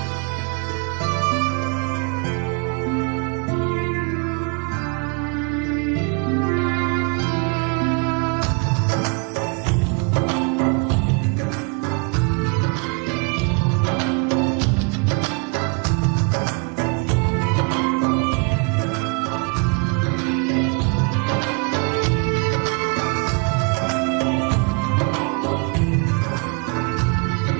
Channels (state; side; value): quieter; left; 34.3 dB